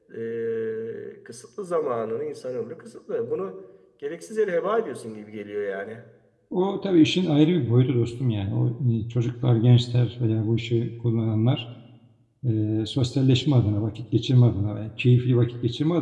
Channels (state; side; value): identical; both; correlation 1.00